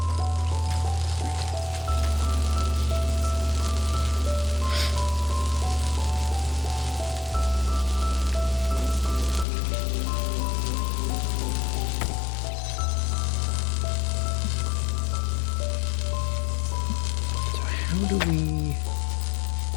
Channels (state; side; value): drops out; right; at 9.5 s